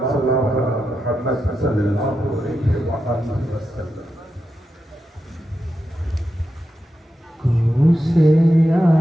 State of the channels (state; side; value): normal; both; correlation 0.88